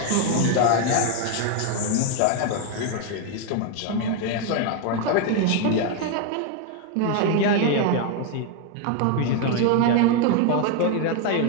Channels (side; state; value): both; different; correlation 0.01